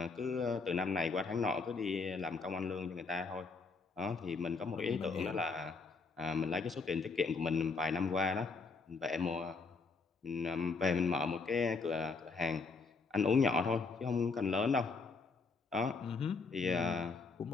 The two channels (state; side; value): quieter; right; 4.5 dB